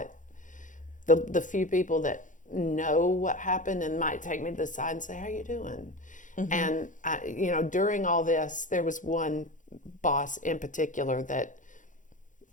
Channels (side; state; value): right; late; 0.37 ms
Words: The few people that know what happened and might take me to the side and say, "How you doing?" Mm-hmm. And during all this, there was one boss in particular that